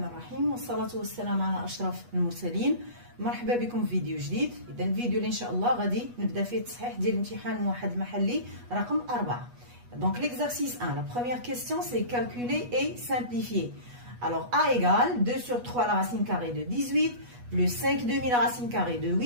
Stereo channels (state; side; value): late; left; 8.2 ms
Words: الرحيم والصلاة والسلام على أشرف المرسلين. مرحبا بكم في فيديو جديد. إذا الفيديو اللي إن شاء الله غادي نبدا فيه التصحيح ديال الامتحان موحد محلي رقم 4. Donc l'exercice 1, la première question c'est calculer et simplifier. Alors A égale 2 sur 3 la racine carrée de 18 plus 5 demi la racine carrée de